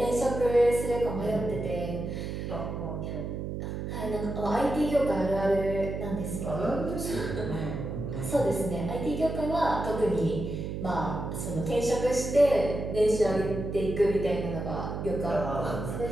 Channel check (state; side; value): noise; right; hum, 5 dB below the sound